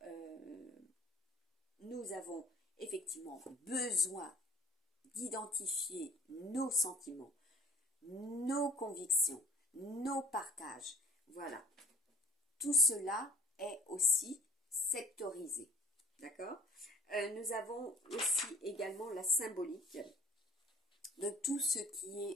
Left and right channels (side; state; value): both; normal; correlation 0.51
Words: nous avons effectivement besoin d'identifier nos sentiments, nos convictions, nos partages. Voilà. Tout cela est aussi sectorisé. D'accord ? Nous avons aussi également la symbolique de tout ce qui